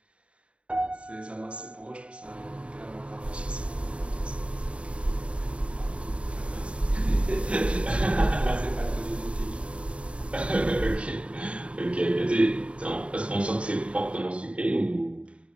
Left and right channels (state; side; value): late; left; 0.060 ms